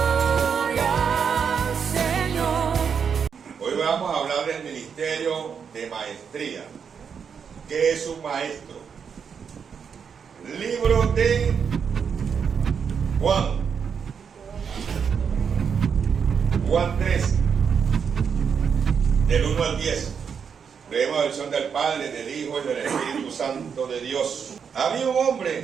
gloria, Señor. Hoy vamos a hablar del ministerio de maestría. ¿Qué es un maestro? Libro de Juan 3, del 1 al 10. Leemos la versión del Padre, del Hijo y del Espíritu Santo de Dios. Había un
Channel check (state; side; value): quieter; left; 6.7 dB